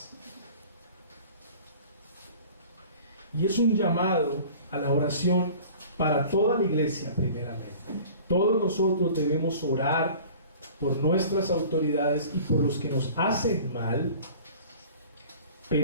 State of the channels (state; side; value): inverted; both; correlation -0.44